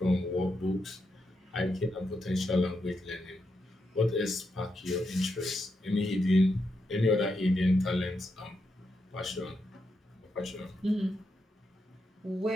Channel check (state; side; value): normal; both; correlation 0.84